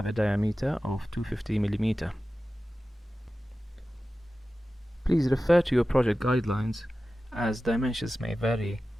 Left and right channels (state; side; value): normal; both; correlation 0.95